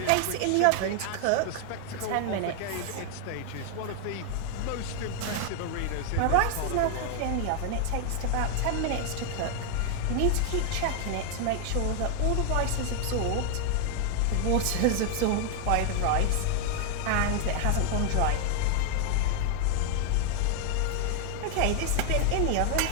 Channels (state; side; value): different; both; correlation 0.00